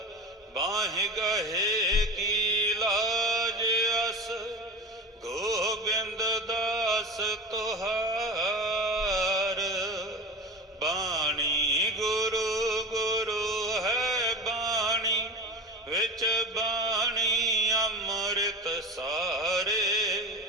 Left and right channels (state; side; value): normal; both; correlation 0.32